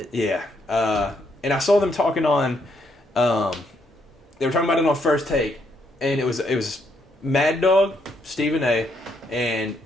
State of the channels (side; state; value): both; normal; correlation 0.74